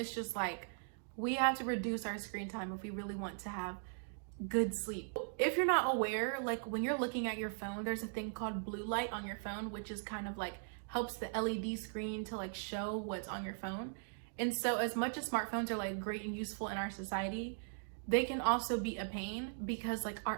just like, we have to reduce our screen time if we really want to have good sleep. If you're not aware, like when you're looking at your phone, there's a thing called blue light on your phone, which is kind of like helps the LED screen to like show what's on your phone. And so as much as smartphones are like great and useful in our society, they can also be a pain because like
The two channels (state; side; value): silent; left; digital silence